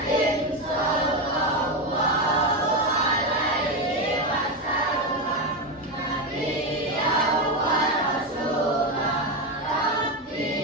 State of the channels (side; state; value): both; normal; correlation 0.12